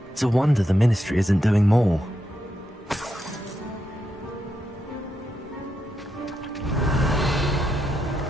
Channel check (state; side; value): normal; both; correlation 0.84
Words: It's a wonder the Ministry isn't doing more.